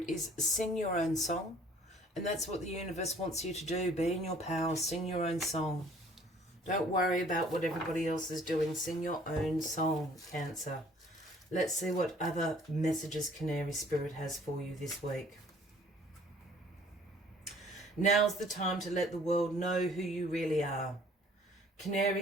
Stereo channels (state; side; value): normal; both; correlation 0.56